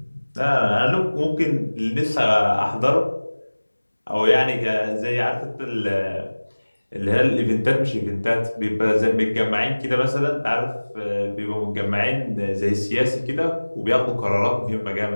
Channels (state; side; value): inverted; both; correlation -1.00